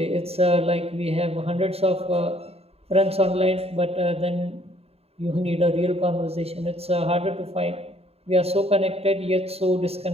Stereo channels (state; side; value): late; left; 0.29 ms